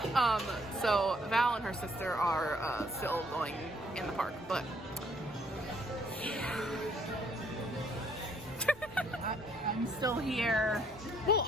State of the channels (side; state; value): both; normal; correlation 0.66